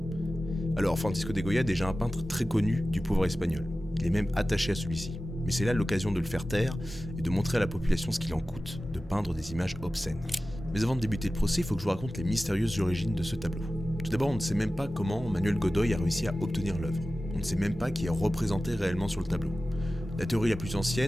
Alors, Francisco de Goya est déjà un peintre très connu du pouvoir espagnol. Il est même attaché à celui-ci. Mais c'est là l'occasion de le faire taire et de montrer à la population ce qu'il en coûte de peindre des images obscènes. Mais avant de débuter le procès, il faut que je vous raconte les mystérieuses origines de ce tableau. Tout d'abord, on ne sait même pas comment Manuel Godoy a réussi à obtenir l'œuvre. On ne sait même pas qui est représenté réellement sur le tableau. La théorie la plus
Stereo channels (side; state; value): both; normal; correlation 0.95